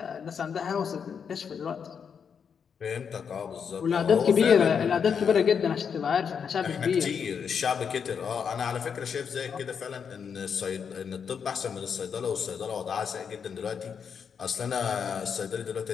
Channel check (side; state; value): right; quieter; 6.8 dB